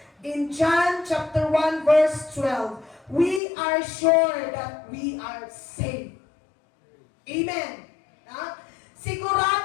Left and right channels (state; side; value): drops out; right; at 3.4 s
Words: In John chapter 1 verse 12, we are sure that we are saved. Amen. Na?